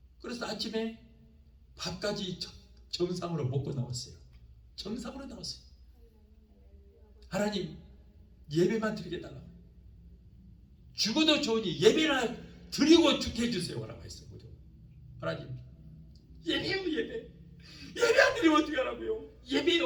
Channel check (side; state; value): both; identical; correlation 1.00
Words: 그래서 아침에 밥까지 정상으로 먹고 나왔어요. 정상으로 나왔어요. 하나님 예배만 드리게 해달라고. 죽어도 좋으니 예배나 드리고 죽게 해주세요 라고 했어요. 하나님 예배요 예배. 예배 안 드리면 어떻게 하라고요.